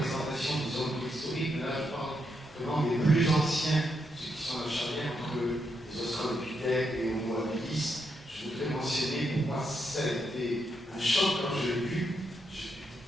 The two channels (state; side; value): normal; both; correlation 0.81